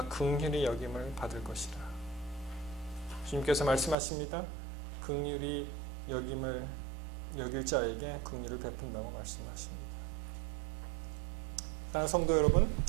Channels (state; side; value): drops out; left; at 4.0 s